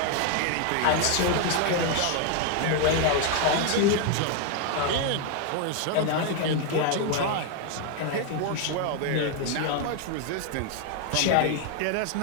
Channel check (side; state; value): both; different; correlation 0.01